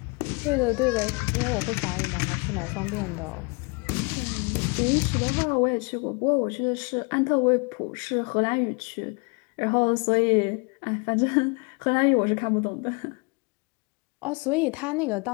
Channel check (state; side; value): quieter; right; 31.5 dB